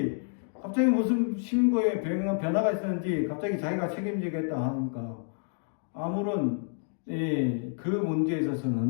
갑자기 무슨 신고에 변화가 있었는지 갑자기 자기가 책임지겠다 하니까 아무런 그 문제에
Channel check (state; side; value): silent; right; 59 dB below the other